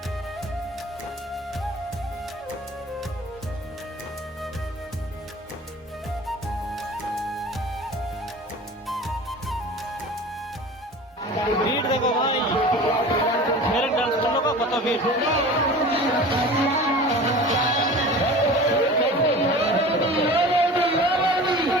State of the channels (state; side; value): normal; both; correlation 0.38